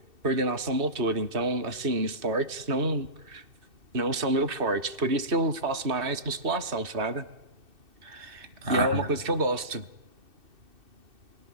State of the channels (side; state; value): left; late; 2.6 ms